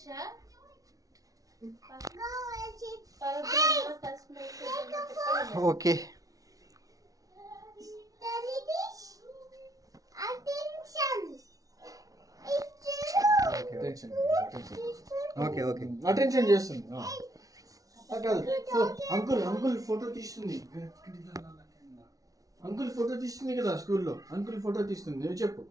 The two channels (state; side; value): late; left; 0.17 ms